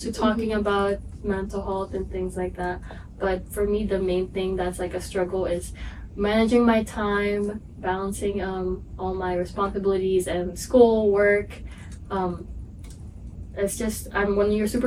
to talking about mental health and things like that. But for me, the main thing that's like a struggle is managing my time, balancing all my responsibilities and school, work, it's just when you're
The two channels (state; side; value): identical; both; correlation 1.00